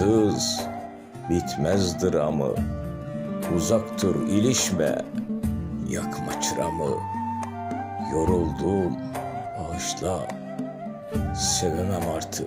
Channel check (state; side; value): identical; both; correlation 1.00